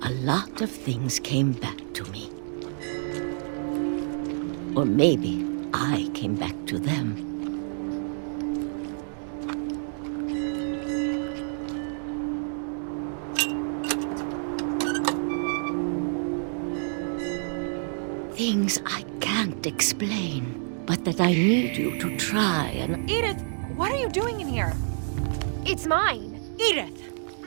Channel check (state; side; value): silent; left; digital silence